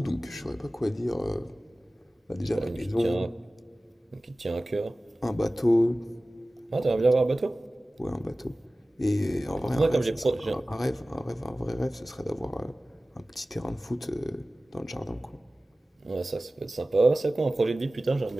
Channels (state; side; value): normal; both; correlation 0.97